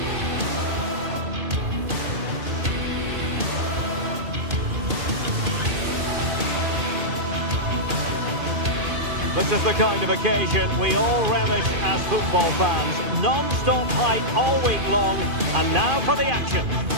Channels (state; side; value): late; left; 2.5 ms